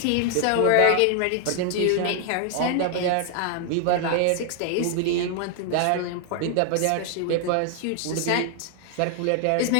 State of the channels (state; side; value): different; both; correlation 0.00